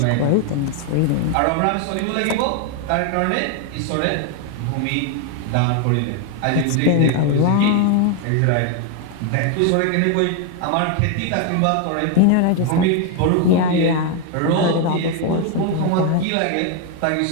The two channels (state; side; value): different; both; correlation 0.01